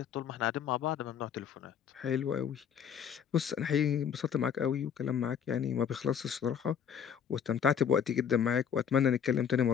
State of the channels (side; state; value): right; quieter; 8.0 dB